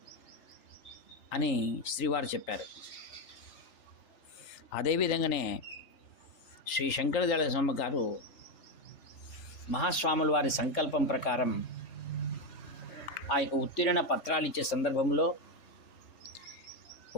అని శ్రీవారు చెప్పారు. అదేవిధంగానే శ్రీ శంకరదయాళ శర్మ గారు మహాస్వాముల వారి సంకల్పం ప్రకారం ఆ యొక్క ఉత్తీర్ణ పత్రాలు ఇచ్చే సందర్భంలో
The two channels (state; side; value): late; right; 3.4 ms